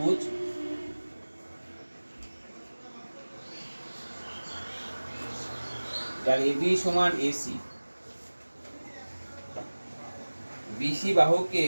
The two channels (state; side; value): inverted; both; correlation -1.00